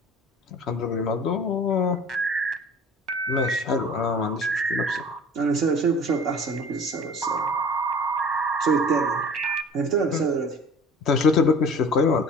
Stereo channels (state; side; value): normal; both; correlation 0.44